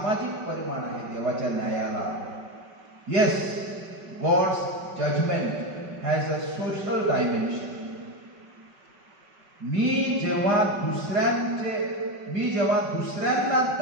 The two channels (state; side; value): late; left; 5.3 ms